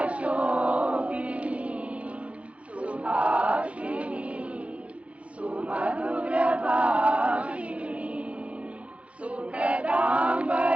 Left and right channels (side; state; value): left; late; 0.063 ms